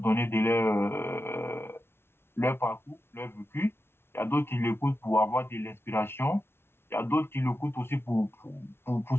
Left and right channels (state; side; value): late; right; 0.12 ms